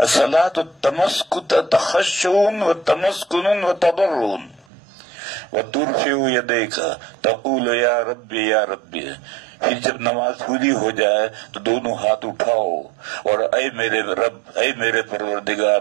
تخشع وتمسکن وتضرع وترفع یدیک تقول یا ربی یا ربی. پھر جب نماز پوری ہو جائے تو دونوں ہاتھ اٹھاؤ اور اے میرے رب، اے میرے پروردگار،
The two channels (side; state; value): left; drops out; at 4.7 s